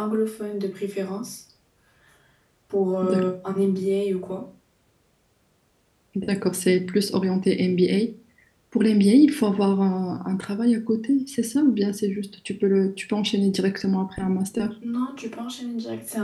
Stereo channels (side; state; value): both; identical; correlation 1.00